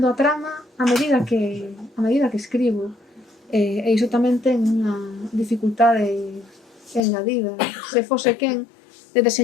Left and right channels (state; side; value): drops out; right; at 7.0 s